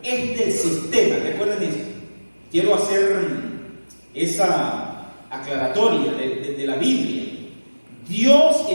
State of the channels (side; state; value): both; inverted; correlation -1.00